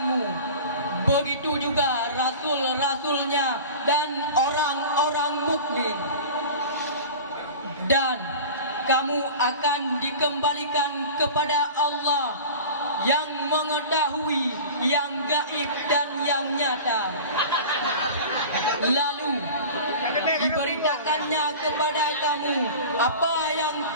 Begitu juga rasul-rasulnya dan orang-orang mukmin. Dan kamu akan dikembalikan kepada Allah yang mengetahui yang gaib dan yang nyata. Lalu diberitakannya kepada kamu apa yang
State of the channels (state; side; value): inverted; both; correlation -0.36